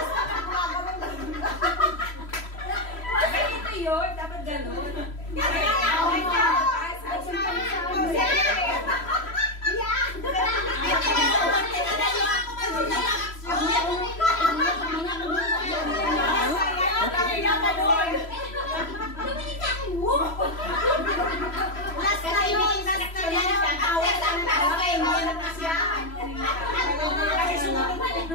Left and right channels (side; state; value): right; late; 3.0 ms